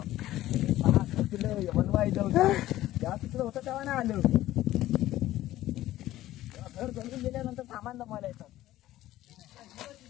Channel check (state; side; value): quieter; right; 14.9 dB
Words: होतं तेव्हा नाही आलं. घर जमून गेल्यानंतर सामान जमायला येतात.